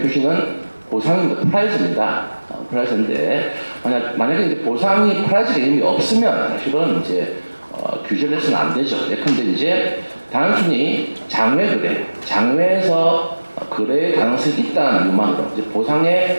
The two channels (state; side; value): inverted; both; correlation -1.00